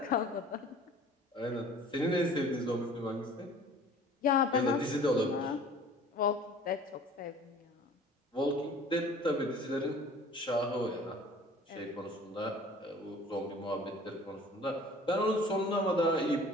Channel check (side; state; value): both; normal; correlation 0.48